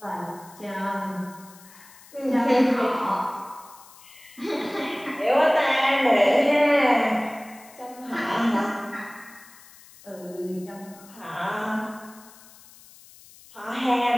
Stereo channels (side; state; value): left; noise; hiss, 22 dB below the sound